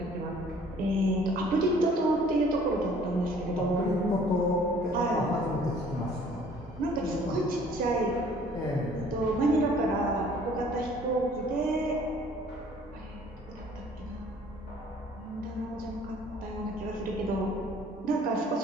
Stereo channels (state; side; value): normal; both; correlation 0.55